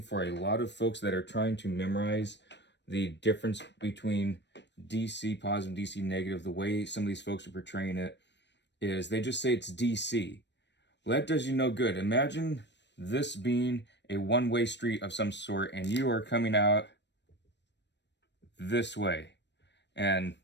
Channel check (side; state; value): right; late; 0.51 ms